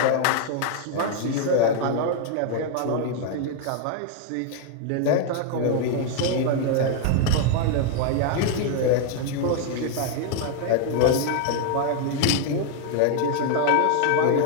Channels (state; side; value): different; both; correlation 0.00